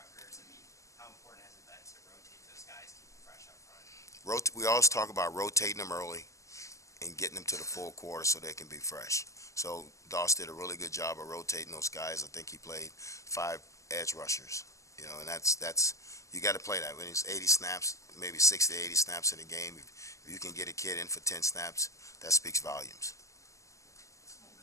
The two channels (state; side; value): late; right; 0.16 ms